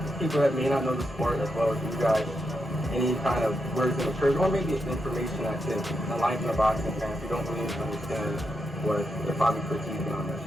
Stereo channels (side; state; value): both; normal; correlation 0.84